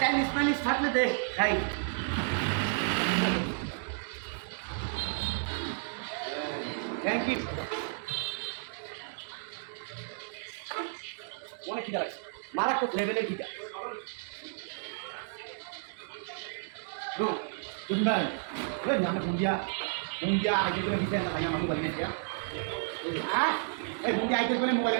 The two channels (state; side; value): silent; left; digital silence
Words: মাইনিজ থাকলে দে খাই থ্যাংক ইউ অনেক খিদা লাগছে মারাত্মক লেভেলের খিদা Đúng đây, rất nhắm là cùng dia ai chơi cái video này mà mobile này kia. Cùng dia ai chơi cái mobile